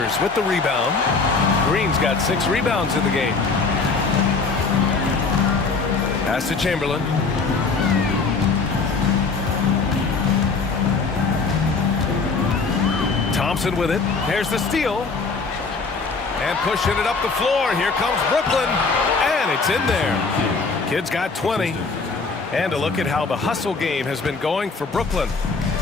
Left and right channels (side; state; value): right; quieter; 4.4 dB